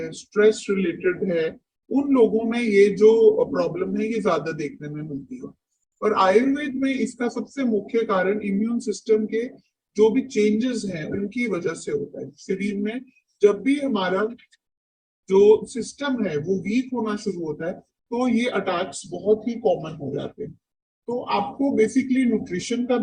स्ट्रेस रिलेटेड है, उन लोगों में ये जो प्रॉब्लम है ये ज्यादा देखने में मिलती है। और आयुर्वेद में इसका सबसे मुख्य कारण इम्यून सिस्टम के जो भी चेंजेस हैं उनकी वजह से होता है। शरीर में जब भी हमारा जो सिस्टम है वो वीक होना शुरू होता है तो ये अटैक्स बहुत ही कॉमन हो जाते हैं। तो आपको बेसिकली न्यूट्रिशन का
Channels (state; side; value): identical; both; correlation 1.00